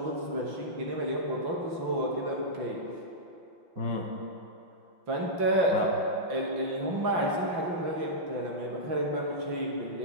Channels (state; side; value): late; left; 5.9 ms